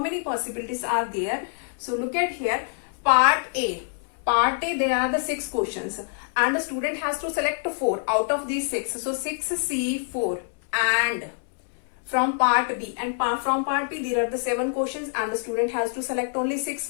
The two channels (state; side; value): silent; right; 60 dB below the other